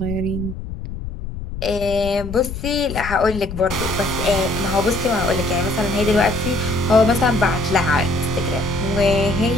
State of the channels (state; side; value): noise; left; rumble, 8 dB below the sound